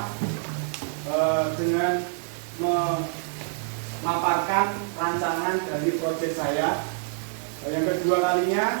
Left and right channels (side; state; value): left; silent; digital silence